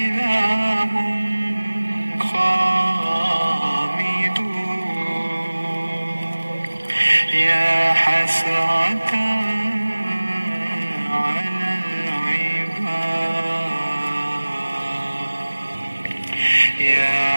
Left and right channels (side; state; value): both; inverted; correlation -1.00